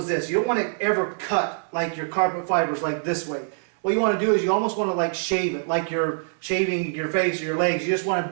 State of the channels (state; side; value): silent; left; 62 dB below the other